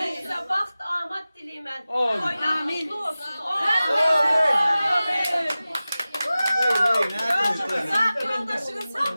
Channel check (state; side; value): inverted; both; correlation -0.96